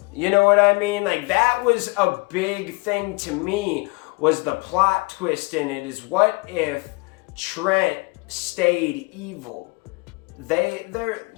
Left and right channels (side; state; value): right; quieter; 27.5 dB